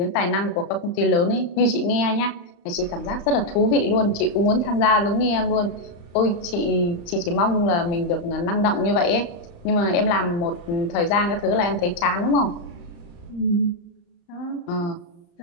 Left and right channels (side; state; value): right; late; 35 ms